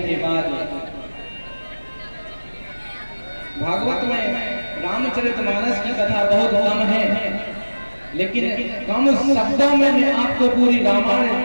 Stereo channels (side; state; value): both; inverted; correlation -1.00